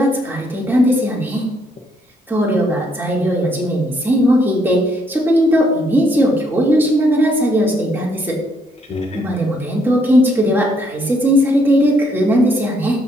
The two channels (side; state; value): both; normal; correlation 0.71